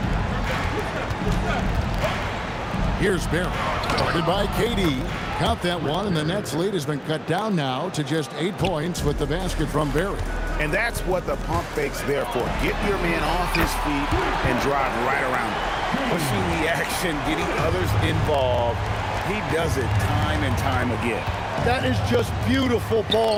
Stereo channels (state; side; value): identical; both; correlation 1.00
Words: Here's Barry, guarded by KD. Count that one, and the Nets lead has been cut down now to just 8 points with the basket from Barry. And that's what the pump fake's there for. Get your man off his feet and drive right around him. Pushing the action, getting others involved. He does it time and time again. That is just beautiful